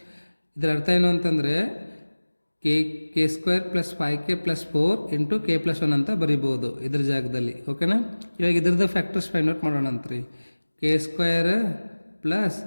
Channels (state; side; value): inverted; both; correlation -1.00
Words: ಇದರ ಅರ್ಥ ಏನು ಅಂತಂದರೆ k square plus 5k plus 4 into K plus 1 ಅಂತ ಬರೀಬೋದು ಇದ್ರ ಜಾಗದಲ್ಲಿ. ಓಕೆನಾ? ಇವಾಗ ಇದ್ರದ್ದು ಫ್ಯಾಕ್ಟರ್ಸ್ ಫೈಂಡ್ ಔಟ್ ಮಾಡೋಣ ಅಂತ್ರಿ. K square plus